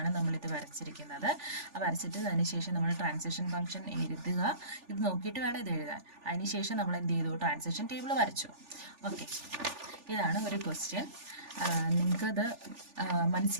നമ്മളിത് വരച്ചിരിക്കുന്നത്. വരച്ചിട്ട് അതിനുശേഷം നമ്മൾ ട്രാൻസിഷൻ ഫംഗ്ഷൻ എഴുതുക. ഇത് നോക്കിയിട്ട് വേണം ഇത് എഴുതാൻ. അതിനുശേഷം നമ്മൾ എന്ത് ചെയ്തു? ട്രാൻസിഷൻ ടേബിൾ വരച്ചു. ഓക്കെ, ഇതാണ് ഒരു ക്വസ്റ്റ്യൻ. നിങ്ങൾക്കത്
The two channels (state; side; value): late; left; 3.4 ms